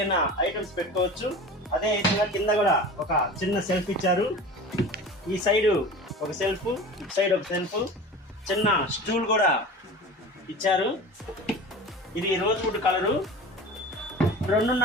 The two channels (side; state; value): both; normal; correlation 0.35